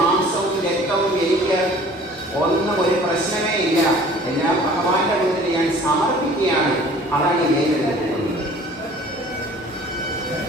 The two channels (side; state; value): both; normal; correlation 0.49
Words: രക്തവും എനിക്ക് ഒന്നും ഒരു പ്രശ്നമേ ഇല്ല, എല്ലാം ഭഗവാന്റെ മുന്നിൽ ഞാൻ സമർപ്പിക്കുകയാണ്. അതാണ് വേരെടുത്ത് കുത്തുന്നത്.